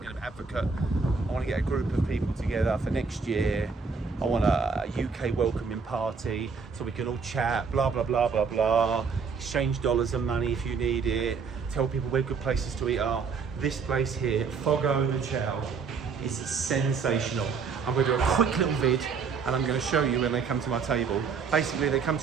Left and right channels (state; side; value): quieter; left; 5.4 dB